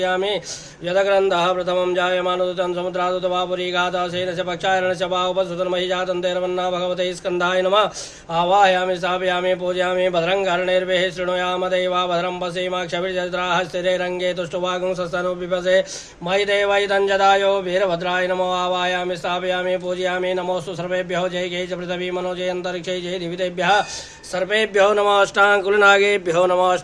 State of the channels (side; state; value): both; identical; correlation 1.00